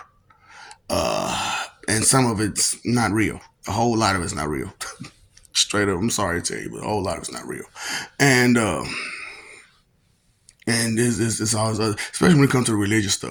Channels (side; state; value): both; identical; correlation 1.00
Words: and some of it's not real. A whole lot of it's not real. Straight up, I'm sorry to tell you, but a whole lot of it's not real, and this always, especially when it comes to religious